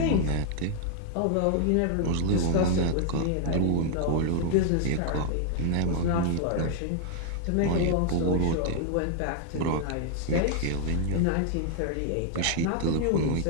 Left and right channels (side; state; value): both; different; correlation 0.00